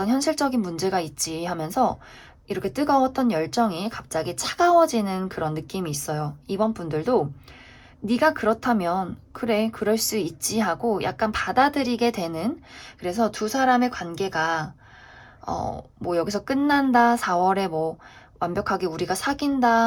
현실적인 문제가 있지 하면서 이렇게 뜨거웠던 열정이 갑자기 차가워지는 그런 느낌이 있어요. 이번 분들도 네가 그렇다면 그래, 그럴 수 있지 하고 약간 받아들이게 되는, 그래서 두 사람의 관계가 뭐 여기서 끝난다, 4월에 뭐 완벽하게 우리가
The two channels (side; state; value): both; identical; correlation 1.00